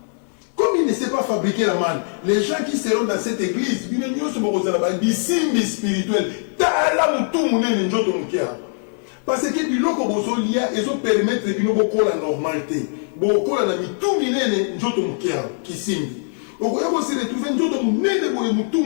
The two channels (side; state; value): right; silent; 64 dB below the other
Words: Comme il ne sait pas fabriquer la manne, les gens qui seront dans cette église, ils ne sont pas des signes spirituels. Parce que biloko bozolia ezo permettre bino bokola normalité. Bokola na mitu minene njoto mukia kisimbi. Okoya ko se retrouver njoto munene boye mutu